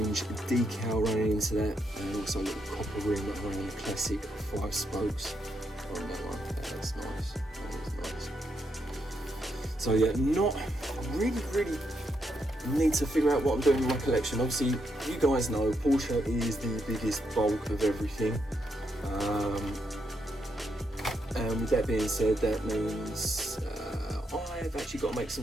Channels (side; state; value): both; normal; correlation 0.80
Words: decal running into that, and also a little copper rim around the classic 5 spokes on that one. That's nice, that is nice. So yeah, not really need to figure out what I'm doing in my collection. Obviously, you guys know Porsche is the biggest bulk of everything. And with that being said, that means I've actually got to make